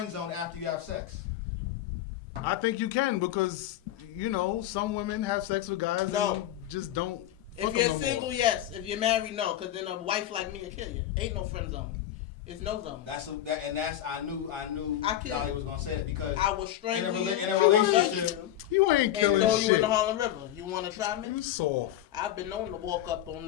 zone after you have sex? I think you can because some women have sex with guys no. and just don't. If you're single, yes. If you're married, no. Because then a wife like me will kill you. Ain't no friend zone. It's no zone. I knew Dolly was gonna say that because I was in a relationship, you ain't killing and throw you in the Harlem River. You want to try me? You soft. I've been known to walk up on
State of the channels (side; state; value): right; quieter; 12.4 dB